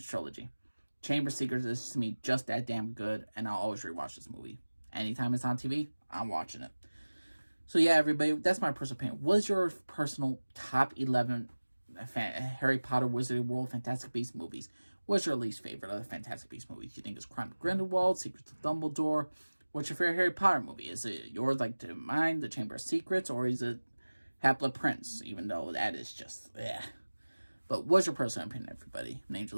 trilogy. Chamber of Secrets is, to me, just that damn good, and I'll always rewatch this movie. Anytime it's on TV, I'm watching it. So yeah, everybody, that's my personal opinion. What is your personal top 11 Harry Potter, Wizarding World, Fantastic Beasts movies? What's your least favorite of the Fantastic Beasts movies? Do you think it's Crime of Grindelwald, Secrets of Dumbledore? What's your favorite Harry Potter movie? Is it yours like to mine, The Chamber of Secrets, or is it Half-Blood Prince? Even though that is just, But what's your personal opinion, everybody? My name's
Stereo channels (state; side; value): inverted; both; correlation -1.00